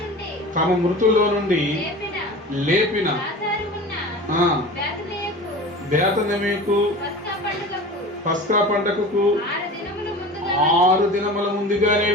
తమ మృతుల్లో నుండి లేపిన బేతనీకు పస్కా పండగకు 6 దినముల ముందుగానే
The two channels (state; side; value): normal; both; correlation 0.35